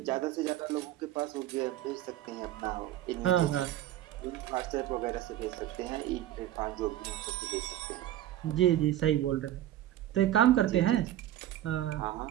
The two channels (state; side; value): quieter; left; 13.0 dB